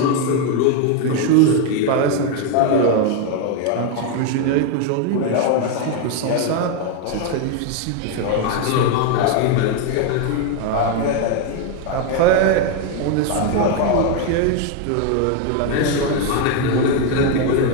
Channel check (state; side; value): different; both; correlation 0.01